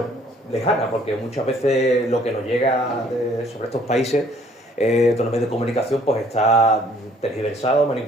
lejana, porque muchas veces lo que nos llega sobre estos países, todos los medios de comunicación, pues está tergiversado,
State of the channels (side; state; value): both; normal; correlation 0.59